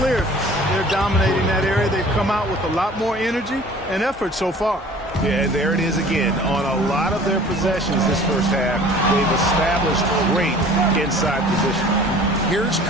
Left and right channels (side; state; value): both; normal; correlation 0.48